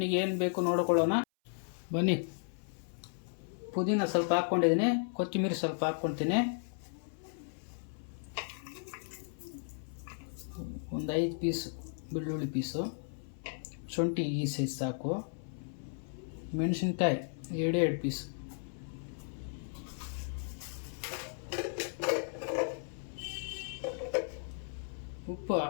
ಏನು ಬೇಕು ನೋಡ್ಕೊಳ್ಳೋಣ ಬನ್ನಿ. ಪುದೀನ ಸ್ವಲ್ಪ ಹಾಕ್ಕೊಂಡಿದ್ದೀನಿ, ಕೊತ್ತಂಬರಿ ಸ್ವಲ್ಪ ಹಾಕ್ಕೊಳ್ತೀನಿ, ಒಂದು 5 ಪೀಸ್ ಬೆಳ್ಳುಳ್ಳಿ ಪೀಸು, ಶುಂಠಿ ಈ ಸೈಜ್ ಸಾಕು, ಮೆಣಸಿನ್ಕಾಯಿ 2 ಪೀಸ್, ಉಪ್ಪು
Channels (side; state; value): right; silent; 54 dB below the other